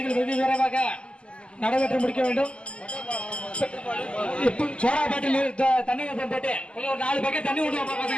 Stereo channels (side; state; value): right; late; 0.053 ms